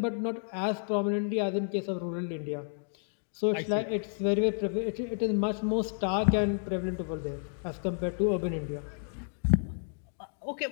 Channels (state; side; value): silent; right; digital silence